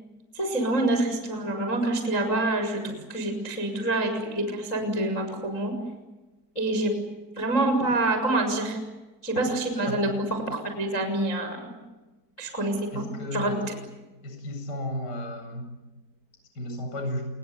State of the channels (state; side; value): late; right; 4.5 ms